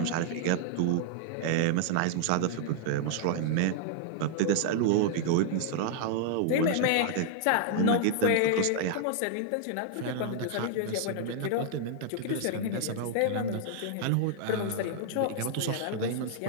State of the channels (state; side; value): different; both; correlation 0.00